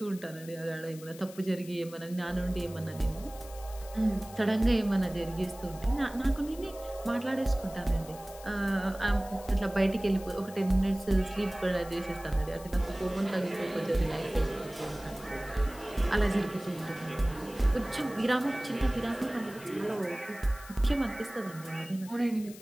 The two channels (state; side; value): noise; left; hiss, 18 dB below the sound